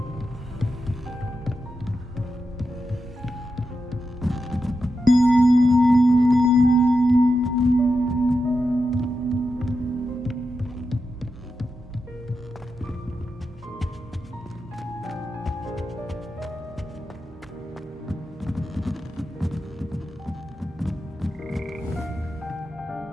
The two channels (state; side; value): normal; both; correlation 0.88